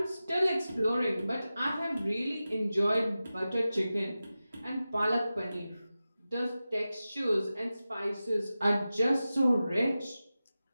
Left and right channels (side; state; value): both; inverted; correlation -0.94